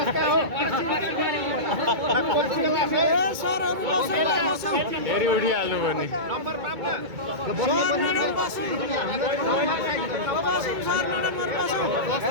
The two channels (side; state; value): left; late; 2.2 ms